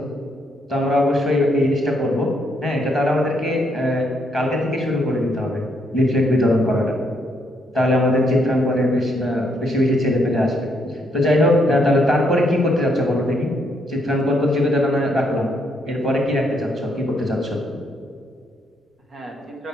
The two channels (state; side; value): normal; both; correlation 0.74